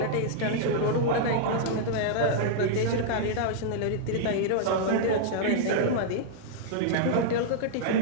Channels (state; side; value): different; both; correlation -0.01